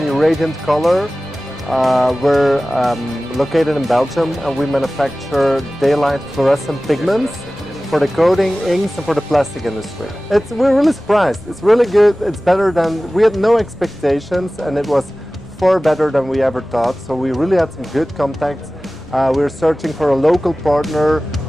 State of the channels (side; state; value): left; noise; rumble, 24 dB below the sound